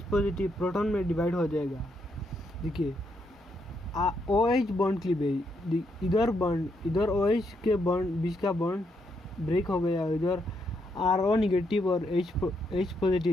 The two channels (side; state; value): both; normal; correlation 0.78